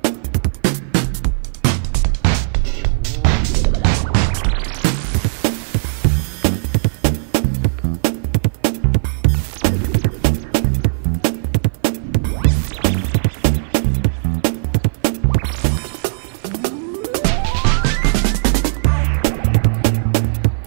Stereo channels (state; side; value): silent; left; 56 dB below the other